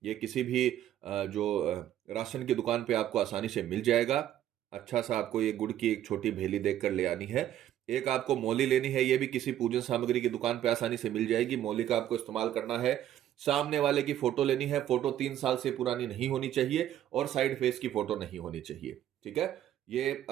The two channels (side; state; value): left; quieter; 11.7 dB